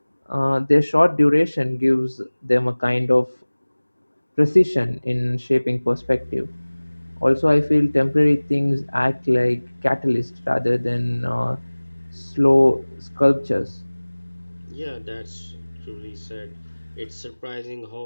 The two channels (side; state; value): both; inverted; correlation -1.00